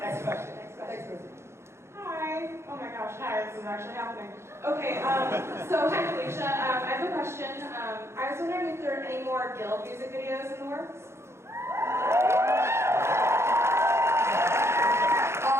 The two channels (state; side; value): late; left; 0.13 ms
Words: question. Next question. Hi. Oh my gosh, hi, this is actually happening. Okay, so hi Felicia. I have a question. I was wondering if there are any more Guild music videos in the works?